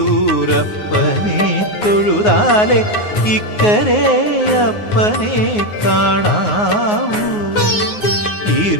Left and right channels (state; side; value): late; right; 9.5 ms